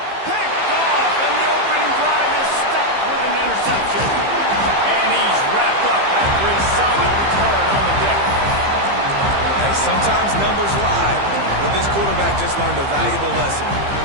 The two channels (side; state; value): left; late; 15 ms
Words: picked off, and the opening drive is stuck with an interception. And he's wrapped up after a solid return on the pick. Hey, sometimes numbers lie, but this quarterback just learned a valuable lesson.